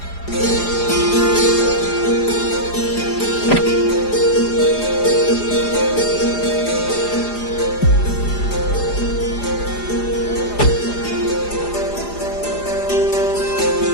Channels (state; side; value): late; right; 4.9 ms